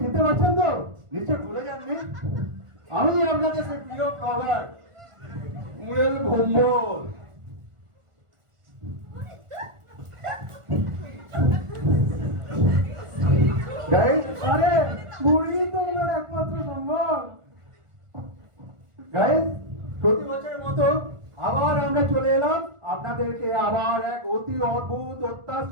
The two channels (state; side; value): late; left; 1.4 ms